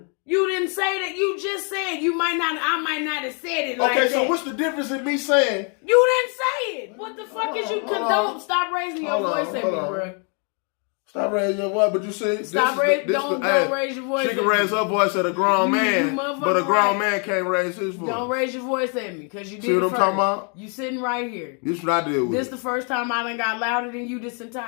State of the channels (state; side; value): quieter; right; 38.9 dB